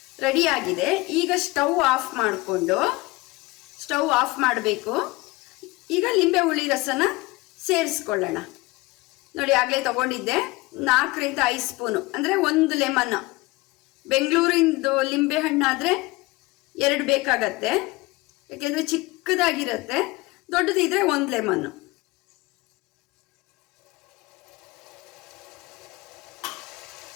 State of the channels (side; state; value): right; quieter; 21.9 dB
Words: ರೆಡಿಯಾಗಿದೆ. ಈಗ ಸ್ಟವ್ ಆಫ್ ಮಾಡಬೇಕು. ಈಗ ಲಿಂಬೆ ಹುಳಿ ರಸನ ಸೇರಿಸ್ಕೊಳ್ಳೋಣ. ನೋಡಿ ಆಗಲೇ ತಗೊಂಡಿದ್ದೆ 4ರಿಂದ 5 ಸ್ಪೂನು, ಅಂದರೆ 1 ಲೆಮನ್. ಬೆಂಗಳೂರಿಂದು ಲಿಂಬೆ ಹಣ್ಣಾದರೆ 2 ಬೇಕಾಗತ್ತೆ, ಯಾಕೆಂದರೆ ಚಿಕ್ಕದಾಗಿರುತ್ತೆ. ದೊಡ್ಡದಿದ್ರೆ 1 ಲೆಮನ್ನು.